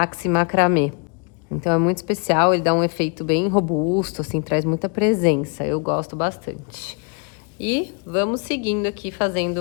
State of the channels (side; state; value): right; quieter; 35.1 dB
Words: macramê. Então, é muito especial, ele dá um efeito bem robusto, assim, traz muita presença, eu gosto bastante. E vamos seguindo aqui,